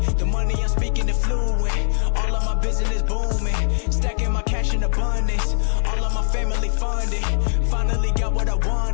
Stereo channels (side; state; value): right; silent; 65 dB below the other